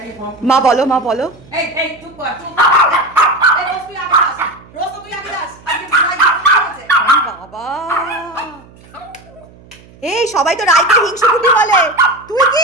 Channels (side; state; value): right; noise; hum, 25 dB below the sound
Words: মা বলো, মা বলো। বাবা, এই সবাই তো রাইকে হিংসুকুটি বলে, তুই